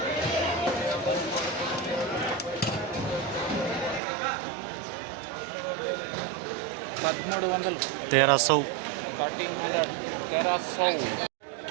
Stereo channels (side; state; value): left; drops out; at 4.0 s